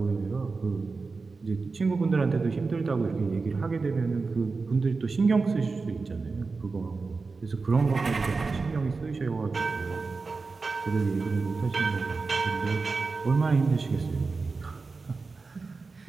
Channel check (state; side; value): quieter; left; 4.2 dB